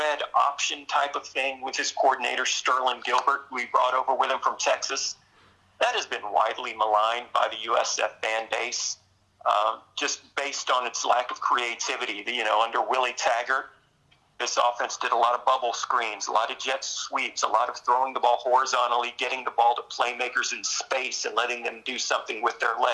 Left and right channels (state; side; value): identical; both; correlation 1.00